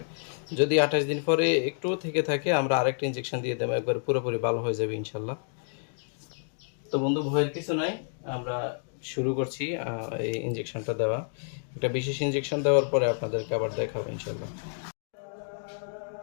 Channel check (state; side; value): silent; right; 59 dB below the other